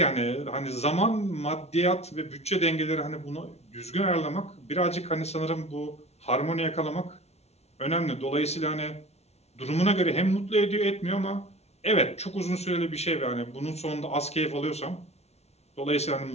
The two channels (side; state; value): right; late; 0.31 ms